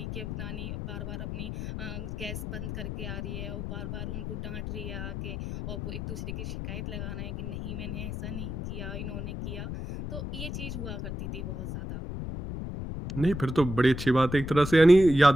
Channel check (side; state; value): left; noise; rumble, 5 dB below the sound